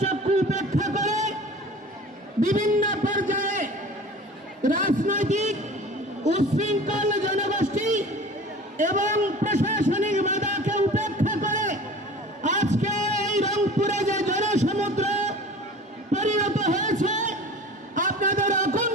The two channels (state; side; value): normal; both; correlation 0.40